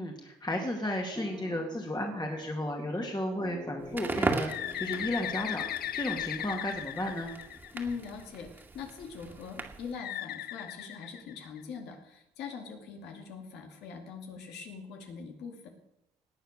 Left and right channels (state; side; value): normal; both; correlation 0.65